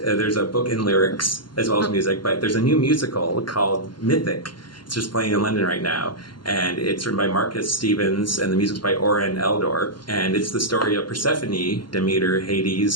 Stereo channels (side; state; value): right; late; 0.72 ms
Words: a book in lyrics as well as music, but there's a new musical called Mythic. It's just playing in London right now, and it's written by Marcus Stevens, and the music's by Oren Eldor, and it's the story of Persephone, Demeter,